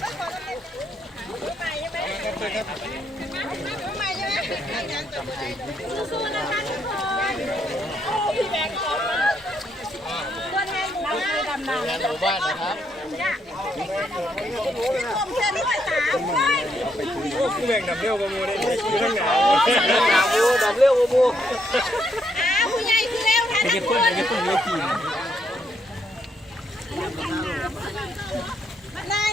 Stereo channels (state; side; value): normal; both; correlation 0.75